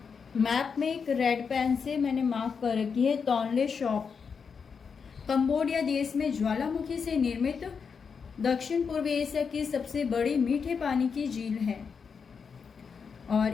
मैप में एक रेड पेन से मैंने मार्क कर रखी है टोनले सॉप। कंबोडिया देश में ज्वालामुखी से निर्मित दक्षिण पूर्व एशिया की सबसे बड़ी मीठे पानी की झील है। और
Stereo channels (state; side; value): quieter; right; 6.0 dB